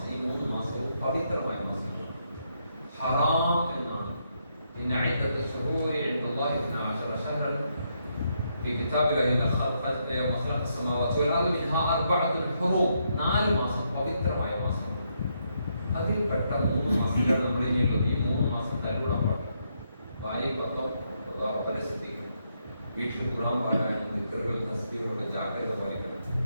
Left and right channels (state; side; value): inverted; both; correlation -0.78